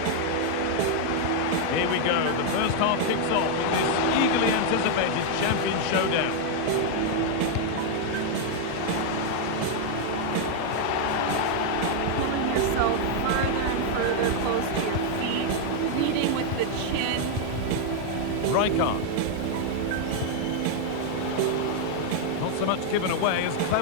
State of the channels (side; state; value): both; different; correlation 0.00